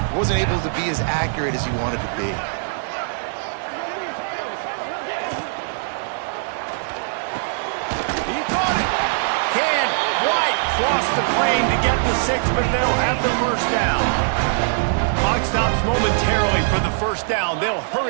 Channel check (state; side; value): silent; left; digital silence